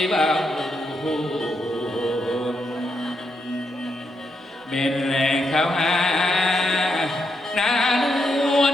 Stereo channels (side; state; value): both; normal; correlation 0.81